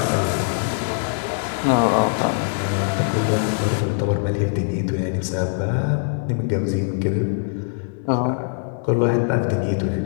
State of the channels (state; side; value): silent; right; 64 dB below the other